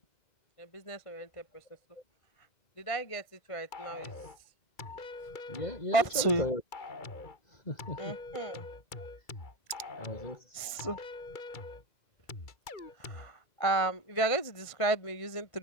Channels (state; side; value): late; right; 1.6 ms